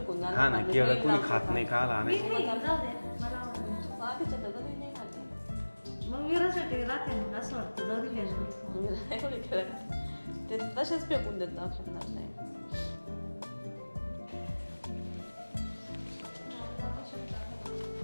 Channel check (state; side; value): inverted; both; correlation -1.00